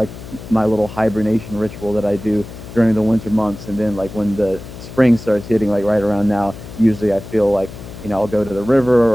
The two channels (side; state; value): left; noise; hum, 14 dB below the sound